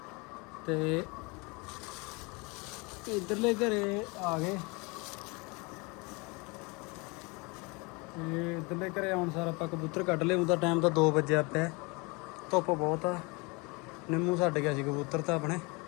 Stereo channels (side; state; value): right; quieter; 28.1 dB